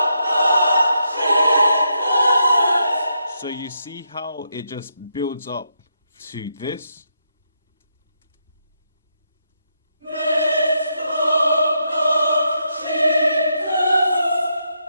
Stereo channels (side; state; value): both; inverted; correlation -0.80